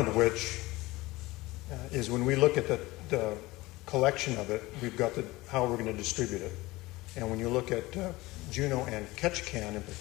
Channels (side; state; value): right; quieter; 20.2 dB